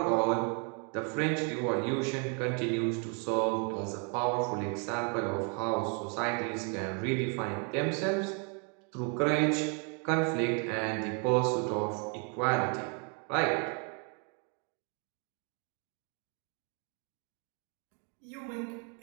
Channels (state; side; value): quieter; left; 38.3 dB